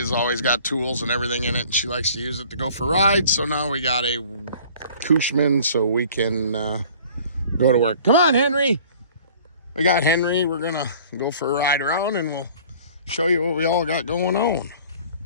always got tools and everything in it, and she likes to use it to go for rides. So now we got a Cushman so we can go to work. Come on, Henry. We got Henry. We're going to go for a ride around and we'll show you what we all got going on.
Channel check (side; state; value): both; inverted; correlation -0.50